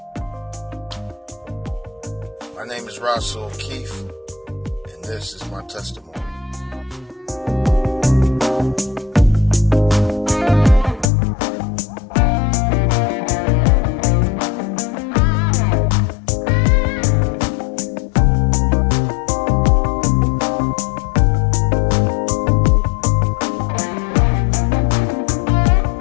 My name is Rahsol Keith, and this is my testimony.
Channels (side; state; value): right; drops out; at 11.1 s